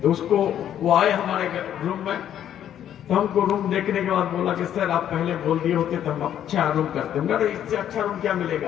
तो उसको वो आए हमारे रूम में, तो हमको रूम देखने के बाद बोला कि सर आप पहले बोल दिए होते तो हम अच्छा रूम करते। मगर इससे अच्छा रूम क्या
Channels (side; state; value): right; quieter; 10.4 dB